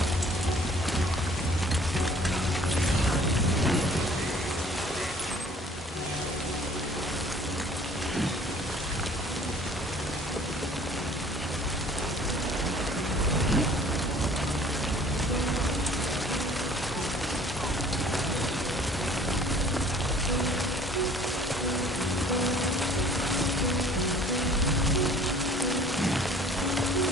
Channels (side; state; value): both; normal; correlation 0.52